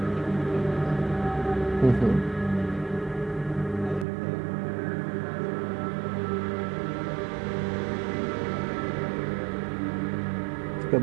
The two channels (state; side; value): drops out; left; at 4.0 s